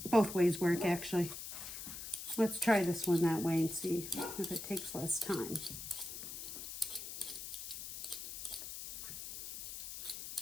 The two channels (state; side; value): noise; left; hiss, 8 dB below the sound